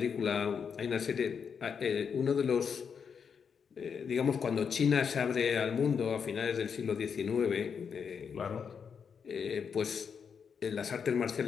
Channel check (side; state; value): right; quieter; 6.6 dB